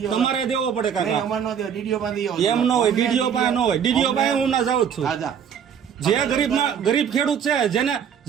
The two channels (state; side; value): quieter; left; 8.0 dB